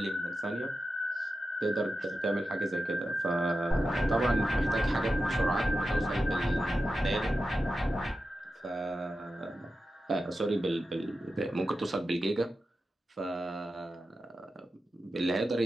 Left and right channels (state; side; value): normal; both; correlation 0.91